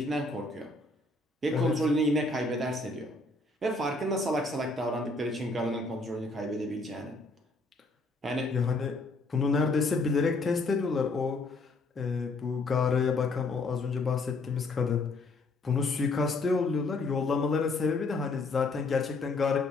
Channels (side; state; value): right; quieter; 3.2 dB